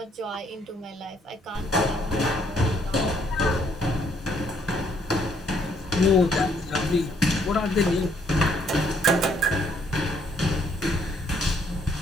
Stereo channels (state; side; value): normal; both; correlation 0.67